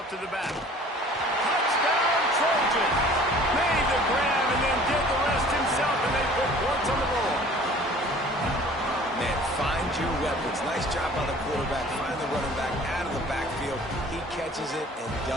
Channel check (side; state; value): both; normal; correlation 0.49